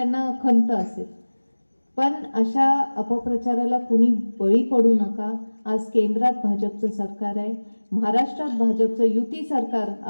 खंत असेल. पण अशा अपप्रचाराला कुणी बळी पडू नका. आज केंद्रात भाजपचं सरकार आहे, महाराष्ट्रात भाजपचं युती सरकार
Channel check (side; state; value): both; inverted; correlation -1.00